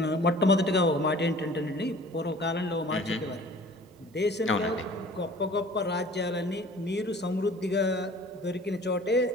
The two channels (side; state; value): both; normal; correlation 0.47